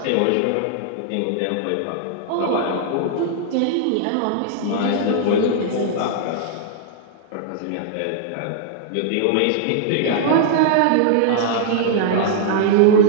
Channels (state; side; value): different; both; correlation -0.01